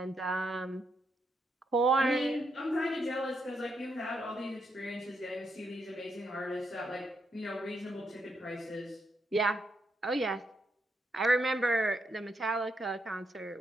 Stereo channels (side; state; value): both; normal; correlation 0.79